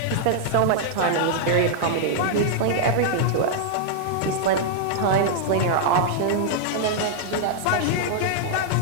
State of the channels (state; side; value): different; both; correlation -0.01